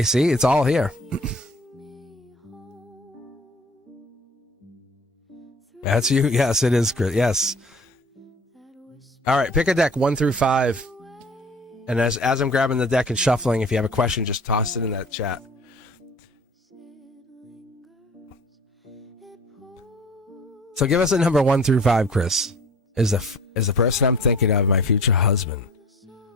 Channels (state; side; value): normal; both; correlation 0.47